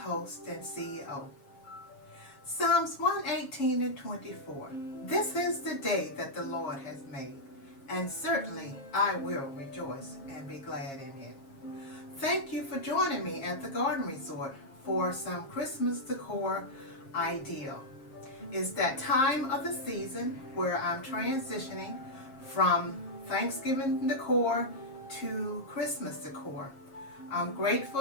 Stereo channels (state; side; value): late; right; 7.4 ms